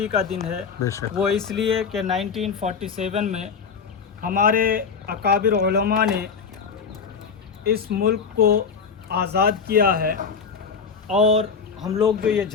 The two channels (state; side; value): quieter; right; 5.8 dB